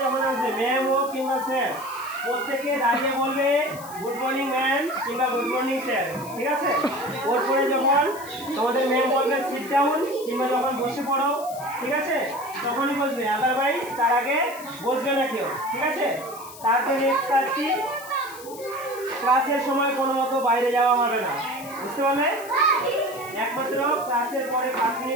যখন আসবে ম্যাম হোক কিংবা স্যার, প্রত্যেকে দাঁড়িয়ে বলবে গুড মর্নিং ম্যাম কিংবা গুড মর্নিং স্যার, ঠিক আছে? ওর পরে যখন তোমাদের ম্যাম বলবে সিট ডাউন কিংবা যখন বসে পড়ো, ঠিক আছে, তখনই বসবে, আদারওয়াইজ তার আগে বসবে না কেউ, ঠিক আছে? তারপরে নেক্সট কাজ কি, ক্লাসের সময় কোনো মতো বাইরে যাওয়া হবে না, বুঝতে পারলে? একমাত্র ক্লাসের পরে 5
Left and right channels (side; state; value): left; noise; hiss, 17 dB below the sound